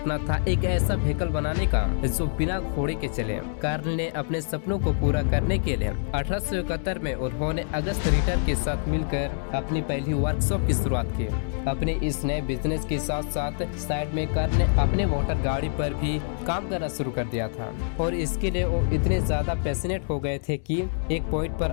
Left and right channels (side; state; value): right; silent; digital silence